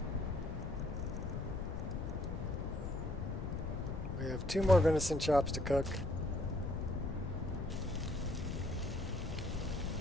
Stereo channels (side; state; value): left; noise; rumble, 5 dB below the sound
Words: We have 2 more venison chops to cook.